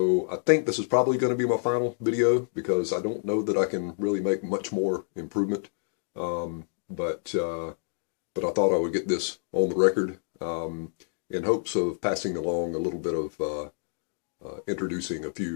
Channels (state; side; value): silent; right; digital silence